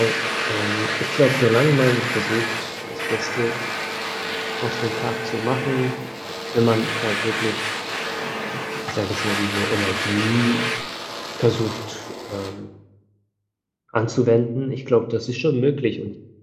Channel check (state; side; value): identical; both; correlation 1.00